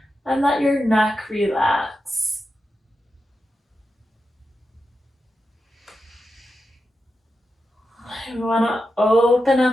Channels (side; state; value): both; normal; correlation 0.89